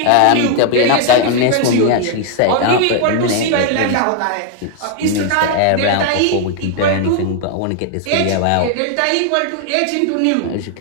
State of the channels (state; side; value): different; both; correlation 0.00